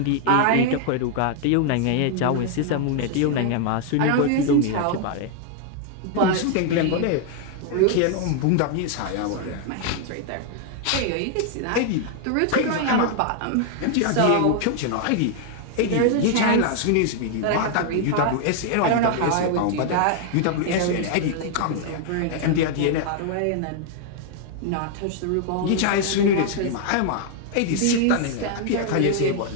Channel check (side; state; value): both; different; correlation 0.00